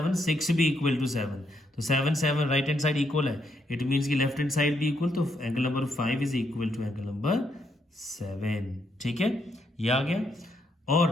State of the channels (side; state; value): both; normal; correlation 0.76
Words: 6 भी इक्वल टू 7, तो 7 7 राइट हैंड साइड इक्वल है, इट मीन्स कि लेफ्ट हैंड साइड भी इक्वल, तो angle number 5 is equal to angle number 7। ठीक है, ये आ गया।